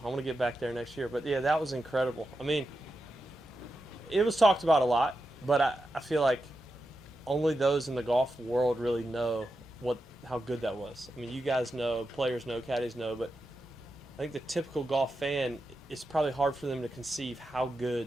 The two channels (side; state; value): both; normal; correlation 0.89